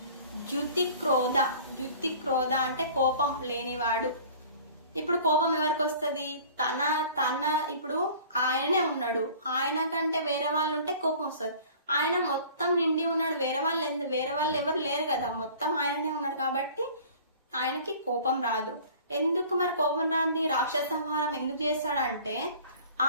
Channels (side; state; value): both; inverted; correlation -0.47